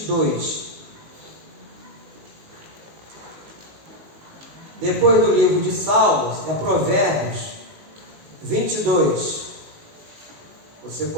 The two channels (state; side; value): late; left; 19 ms